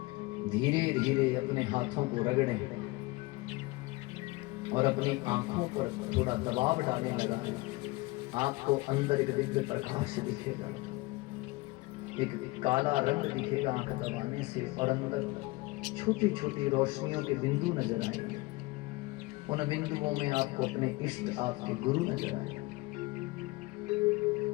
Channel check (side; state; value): right; quieter; 22.4 dB